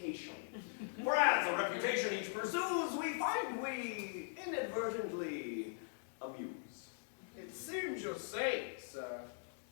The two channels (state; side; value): silent; right; digital silence